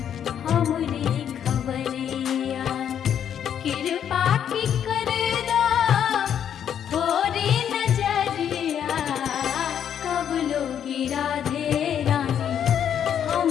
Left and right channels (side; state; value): right; quieter; 9.1 dB